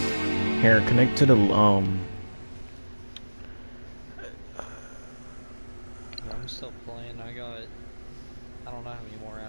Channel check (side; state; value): both; inverted; correlation -1.00